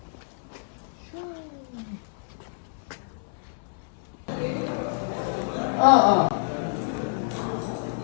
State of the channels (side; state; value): right; silent; 60 dB below the other